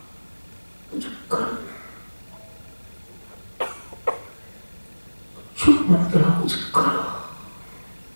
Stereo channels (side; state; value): both; inverted; correlation -1.00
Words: कुछ करो, चुप मत रहो, कुछ करो।